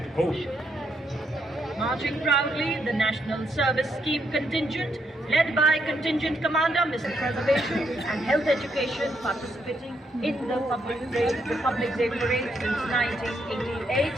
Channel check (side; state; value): both; normal; correlation 0.76